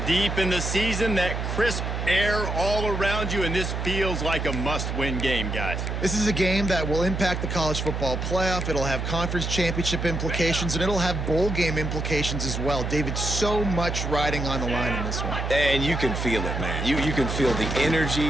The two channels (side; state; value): right; noise; hum, 3 dB below the sound